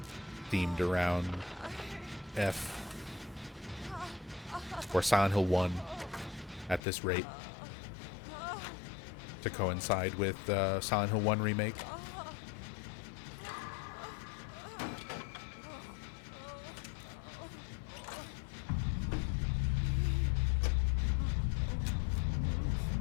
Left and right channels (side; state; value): right; drops out; at 6.8 s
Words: themed around F or Silent Hill 1 at this rate to coincide with Silent Hill 1 remake.